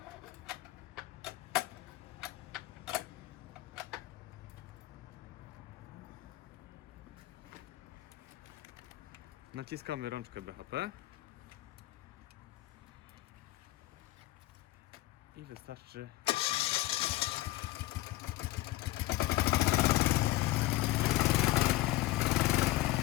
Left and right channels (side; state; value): right; quieter; 17.2 dB